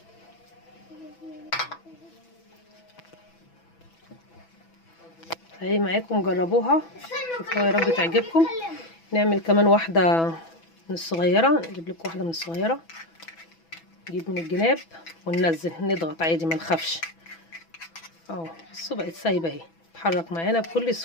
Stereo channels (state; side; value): late; right; 6.1 ms